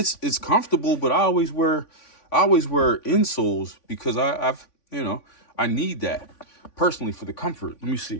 comfortable, but I always wear insoles because I need that personally for the comfort. Let me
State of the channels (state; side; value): late; right; 3.5 ms